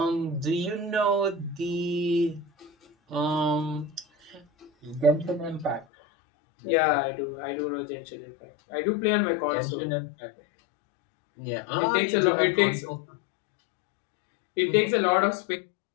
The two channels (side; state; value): right; drops out; at 5.9 s